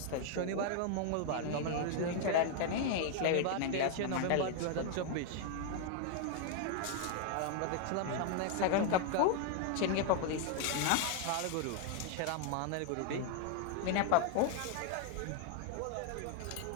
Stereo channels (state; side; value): different; both; correlation 0.00